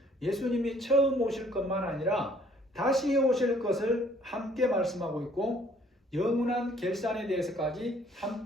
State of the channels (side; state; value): both; normal; correlation 0.60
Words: 예수님이 처음 오실 것만 아니라 다시 오실 것을 함께 말씀하고 있고 영원한 결산에 대해서까지